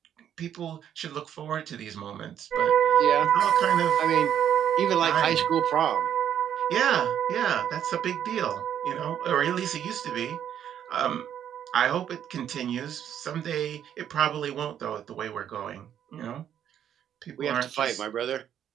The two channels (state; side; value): quieter; left; 9.7 dB